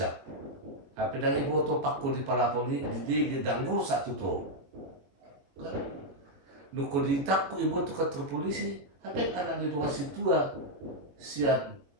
tapi dari ibu tuh pakku di palapon di dangdul satu tuh kan nuko ditakku ibu tuh kantor polisi tapi anak di rumah situa siat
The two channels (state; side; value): late; left; 22 ms